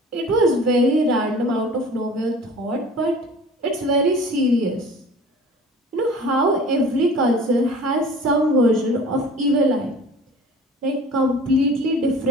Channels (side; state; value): both; normal; correlation 0.43